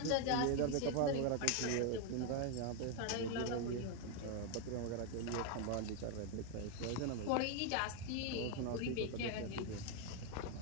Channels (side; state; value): both; different; correlation 0.01